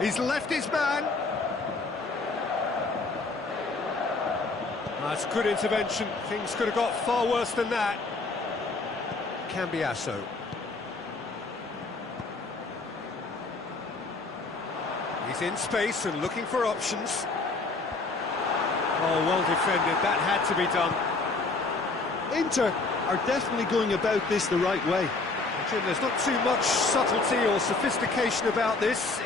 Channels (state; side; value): quieter; right; 3.6 dB